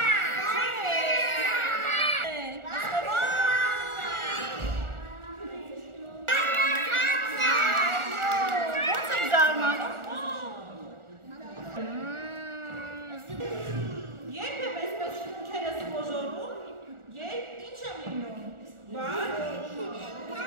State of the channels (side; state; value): left; late; 1.4 ms